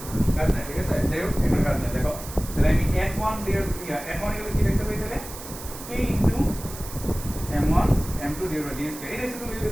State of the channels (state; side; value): noise; right; hiss, 13 dB below the sound